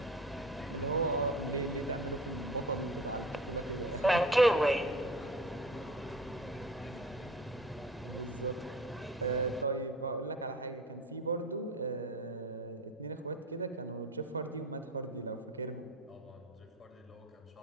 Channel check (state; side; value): normal; both; correlation 0.40